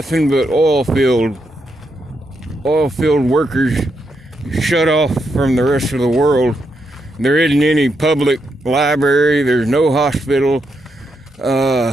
but oil field workers shut off from the rest of the world. There isn't any public library, there's no hospital.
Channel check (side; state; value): both; normal; correlation 0.81